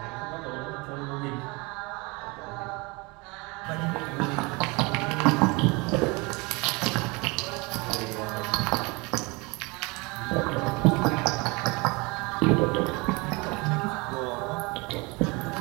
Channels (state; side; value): quieter; left; 26.8 dB